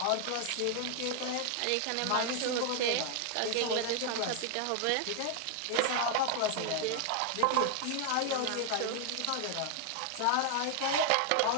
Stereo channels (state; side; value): different; both; correlation 0.00